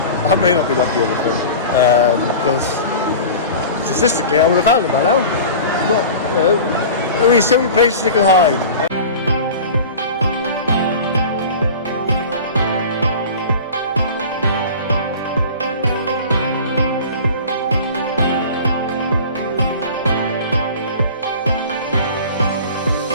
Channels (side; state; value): both; inverted; correlation -0.37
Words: I may not be lucky in this one, because statistically I would have found them by now. got, only so many places they can hide.